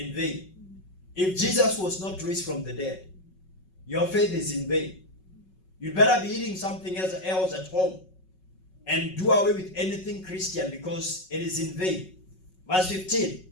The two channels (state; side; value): late; right; 5.4 ms